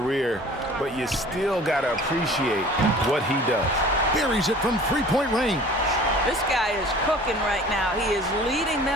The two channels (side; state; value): both; normal; correlation 0.46